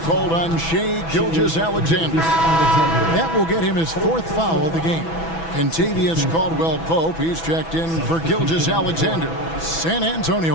on Shai Gilgeous-Alexander. That will get him his 4th foul of the game. Kentavious Caldwell-Pope, he's checked in for Gilgeous-Alexander. San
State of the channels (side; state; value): right; late; 6.1 ms